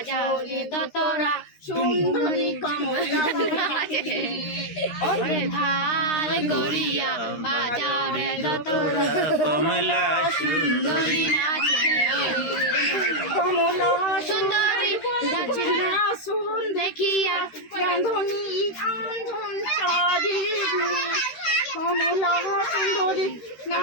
রে দোতরা সুন্দরী কমলা নাচে ওরে ভাল করিয়া বাজাও রে দোতরা কমলা সুন্দরী নাচে কমলা সুন্দরী গাছের না শুন দেখিয়া রান্ধনী আন্ধন চারি কমলা সুন্দরী না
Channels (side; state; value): right; late; 13 ms